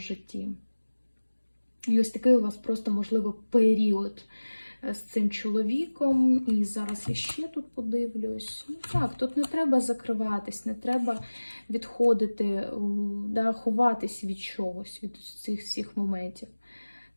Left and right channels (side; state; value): both; inverted; correlation -1.00